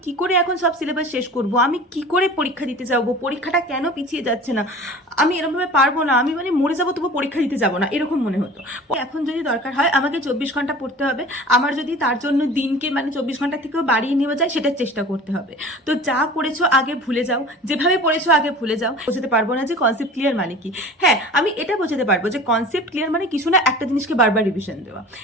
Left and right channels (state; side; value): normal; both; correlation 0.41